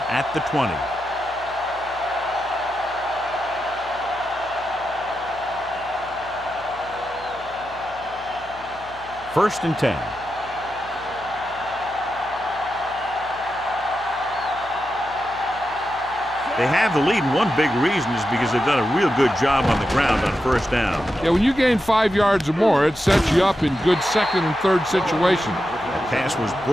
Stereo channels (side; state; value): left; noise; hum, 22 dB below the sound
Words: at the 20. First and 10. They have the lead, and one big reason is because they've done a real good job on the ground on first down. Yeah, when you gain 5 yards or more, it sets you up in good second and third situations. That pass was